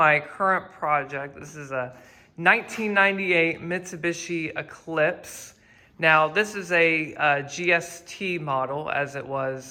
current project. This is a 1998 Mitsubishi Eclipse. Now, this is a GST model, as it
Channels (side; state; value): both; identical; correlation 1.00